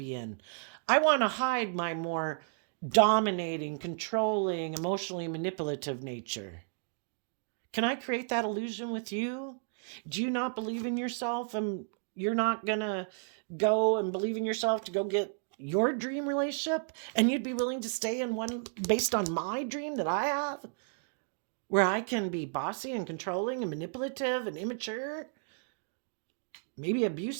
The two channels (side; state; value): left; silent; digital silence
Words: in. I want to hide my more dominating, controlling, emotionally manipulative nature. Can I create that illusion with you? Do you not believe in yourself and you're not going to go and believe in yourself to go get your dream relationship? And you'd be willing to stay in one based on my dream that I have, where I can be bossy and controlling and manipulative and immature, maybe